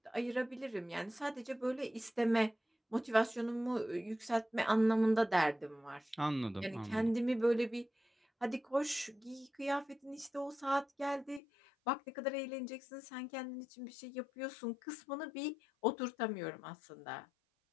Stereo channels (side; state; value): right; drops out; at 11.4 s